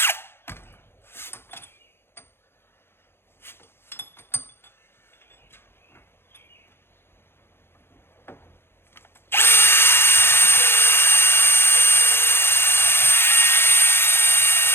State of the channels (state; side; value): late; right; 0.11 ms